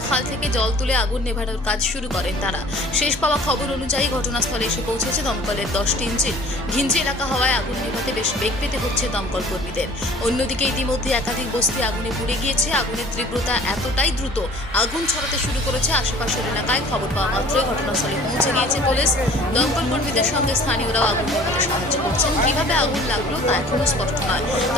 খাল থেকে জল তুলে আগুন নেভানোর কাজ শুরু করেন তারা। শেষ পাওয়া খবর অনুযায়ী ঘটনাস্থলে এসে পৌঁছেছে দমকলের 10টি ইঞ্জিন। ঘিঞ্জি এলাকা হওয়ায় আগুন নেভাতে বেশ বেগ পেতে হচ্ছে দমকল কর্মীদের। অন্যদিকে ইতিমধ্যে একাধিক বস্তি আগুনে পুড়ে গিয়েছে। আগুনের তীব্রতা এতটাই দ্রুত আগুন ছড়াতে শুরু করেছে আশেপাশের এলাকায়। খবর পাওয়া মাত্রই ঘটনাস্থলে পৌঁছে গিয়েছে পুলিশ। দমকল কর্মীদের সঙ্গে স্থানীয়রাও আগুন নেভাতে সাহায্য করছেন। কিভাবে আগুন লাগলো তা এখনো স্পষ্ট নয়,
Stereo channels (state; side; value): normal; both; correlation 0.49